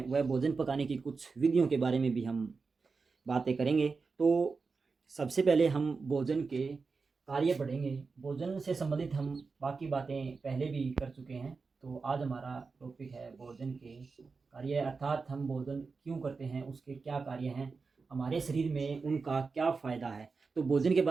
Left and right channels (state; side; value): quieter; left; 4.6 dB